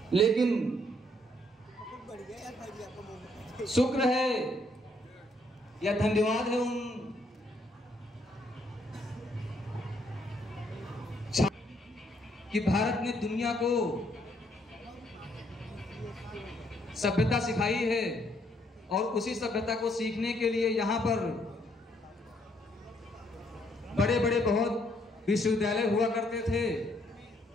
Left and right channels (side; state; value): both; normal; correlation 0.70